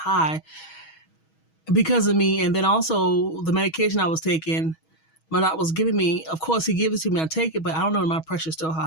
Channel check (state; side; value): late; right; 6.3 ms